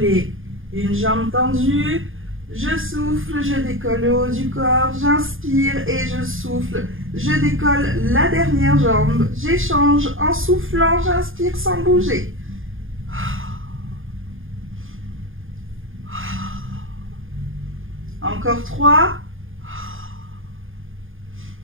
une jambe tendue. Je souffle, je décolle le haut du corps. J'inspire et je souffle. Je décolle la dernière jambe. J'échange en soufflant, j'inspire sans bouger. Encore 3.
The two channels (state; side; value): late; left; 0.59 ms